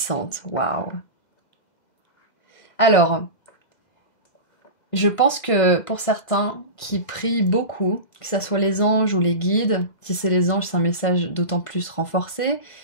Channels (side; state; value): right; late; 2.0 ms